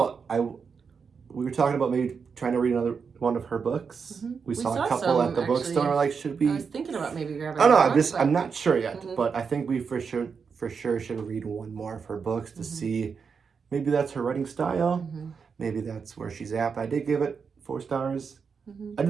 We were talking about maybe trying to read another one of her books. We saw a couple at the bookstore. We're like, should we? I was thinking about maybe grabbing. Oh no, I'm not sure yet. But I think we for sure should read one more of her books to see. Maybe that's her writing style. Maybe that's where she's at. But I did give it 4 stars. I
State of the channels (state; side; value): quieter; left; 5.8 dB